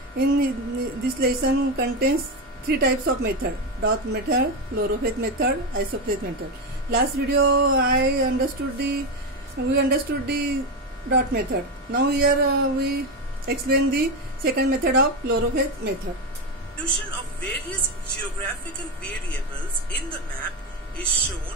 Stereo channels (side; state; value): both; normal; correlation 0.12